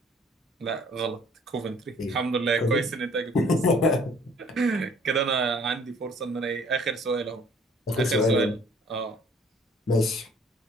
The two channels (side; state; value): both; normal; correlation 0.56